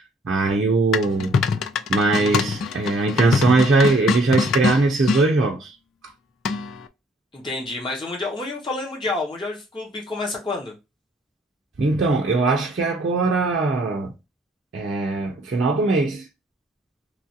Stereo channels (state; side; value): normal; both; correlation 0.62